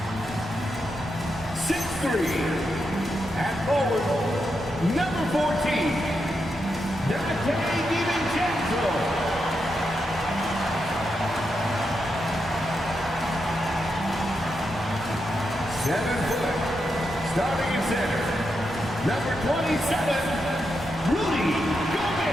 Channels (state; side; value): normal; both; correlation 0.85